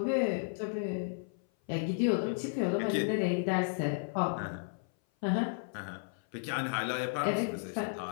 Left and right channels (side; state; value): right; silent; 55 dB below the other